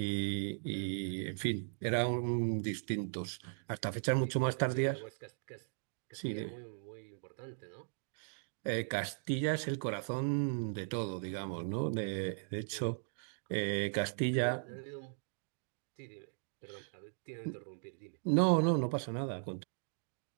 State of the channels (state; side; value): silent; left; digital silence